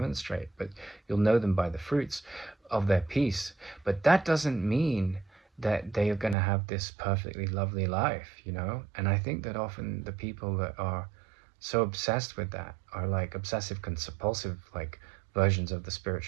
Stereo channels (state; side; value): drops out; left; at 6.4 s